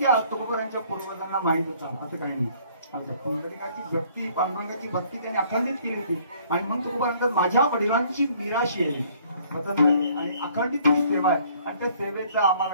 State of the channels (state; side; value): inverted; both; correlation -0.59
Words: तुकोबारांच्या पूर्वजांना माहित होता असं काही नाही आमच्या पुंडलिकाची भक्ती पांडुरंगाची भक्ती त्यांनी अखंडित केली होती आणि म्हणून तुकोबारांतर माझ्या वडिलांची निराशी आहे आणि अखंडित सेवा आहे आणि त्या सेवेचा आम्हाला